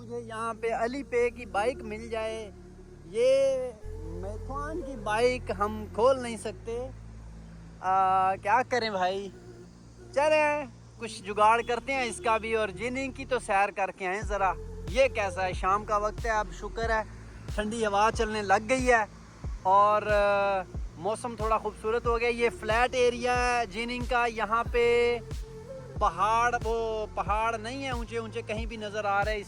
यहाँ पे अली पे की बाइक मिल जाए। ये मैथॉन की बाइक हम खोल नहीं सकते, क्या करें भाई। चलें कुछ जुगाड़ करते हैं इसका भी और जिनिंग की तो सैर करके आए ज़रा। ये कैसा है, शाम का वक्त है, अब शुक्र है ठंडी हवा चलने लग गई है और मौसम थोड़ा खूबसूरत हो गया। ये फ्लैट एरिया है जिनिंग का, यहाँ पे पहाड़ नहीं है ऊंचे ऊंचे कहीं भी नज़र आ रहे हैं,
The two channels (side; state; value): both; identical; correlation 1.00